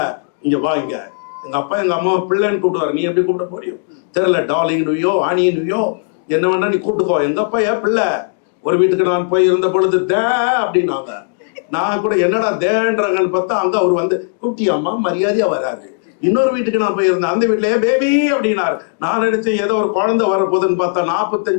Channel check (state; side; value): silent; right; digital silence